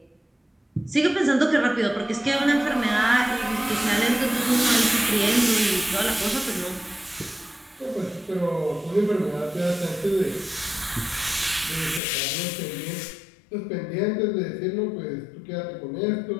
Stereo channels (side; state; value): right; drops out; at 12.0 s